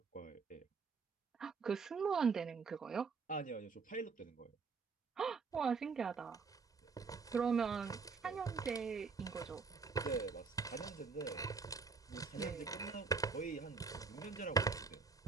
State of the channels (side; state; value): left; quieter; 4.9 dB